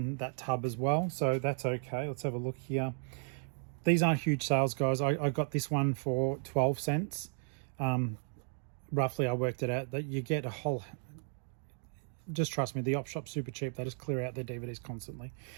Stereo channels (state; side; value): silent; left; 55 dB below the other